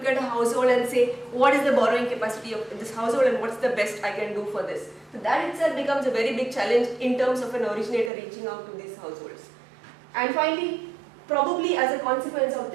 at a household and say what is the borrowing capacity of this household and what's the best I can do for this. So that itself becomes a very big challenge in terms of an originator reaching out to these households. And finally, probably as a consequence of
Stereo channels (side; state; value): left; drops out; at 8.1 s